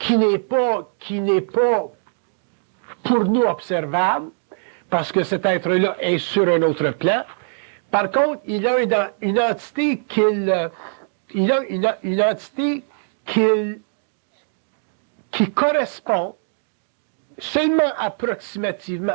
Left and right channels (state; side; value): silent; left; digital silence